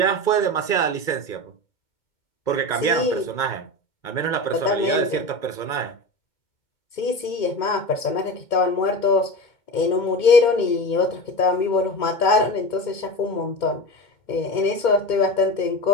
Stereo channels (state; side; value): late; right; 2.2 ms